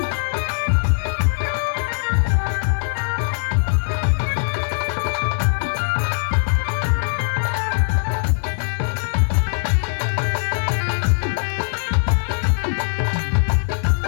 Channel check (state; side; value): silent; right; 65 dB below the other